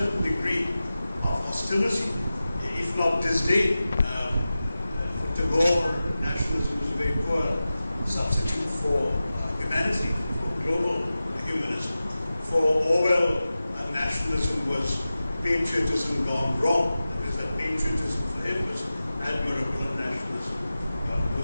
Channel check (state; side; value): inverted; both; correlation -0.95